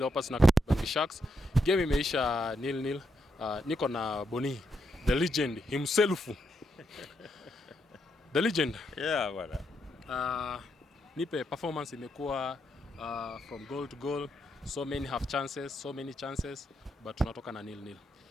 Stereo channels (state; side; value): normal; both; correlation 0.80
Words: na AMBANI Sharks. Game imeisha 0-0. Niko na Boni, the legend himself. The legend. Yeah, bwana. Nipe performance imekuwa from goal to goal. So many half chances, so many chances, but tunatoka na 0-0.